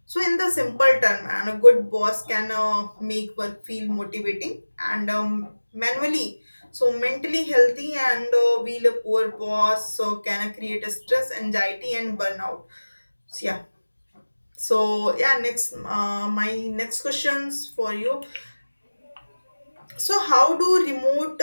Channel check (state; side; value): inverted; both; correlation -1.00